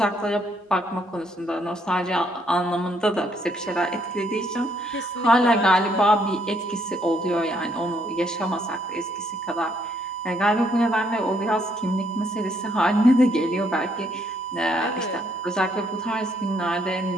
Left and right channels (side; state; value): both; normal; correlation 0.70